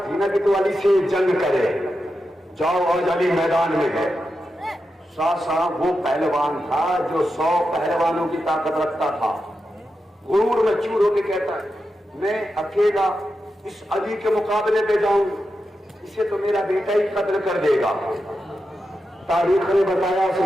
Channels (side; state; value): both; normal; correlation 0.89